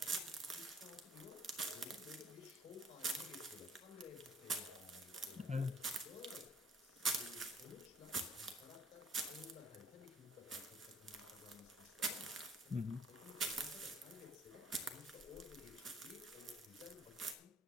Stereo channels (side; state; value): both; normal; correlation 0.59